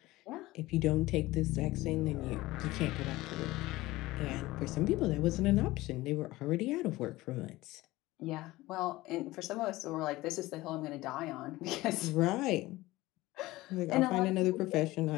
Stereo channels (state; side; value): quieter; right; 18.7 dB